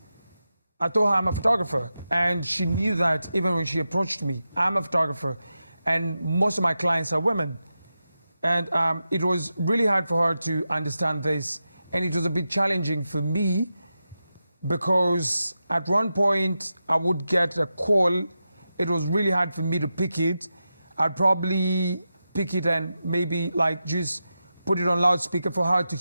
I told her I'm a photographer. And she knew that even when she approached me. I'm a photographer. And most of my clients are women. And it was really hard for her to understand this. And it was a bit challenging for me because at one point I would get a call. It was really hard for me to pick it. I'd probably pick it and maybe like just put it on loudspeaker for her to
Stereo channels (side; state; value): both; inverted; correlation -0.90